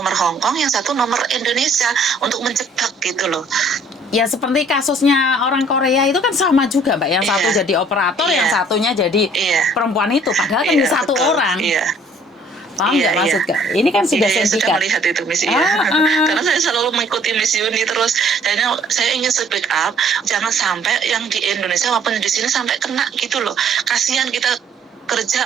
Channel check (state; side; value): normal; both; correlation 0.58